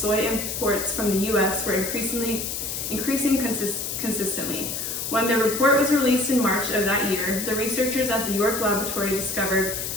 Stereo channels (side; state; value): left; noise; hiss, 4 dB below the sound